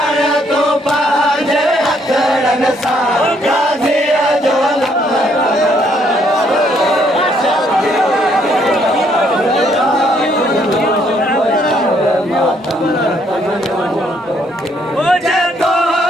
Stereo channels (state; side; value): normal; both; correlation 0.69